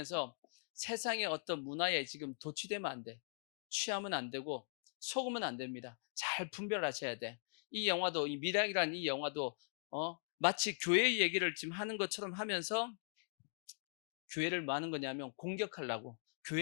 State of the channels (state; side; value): silent; right; digital silence